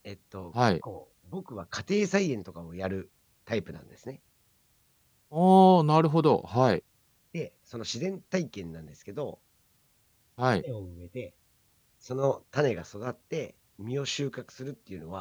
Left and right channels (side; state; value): both; identical; correlation 1.00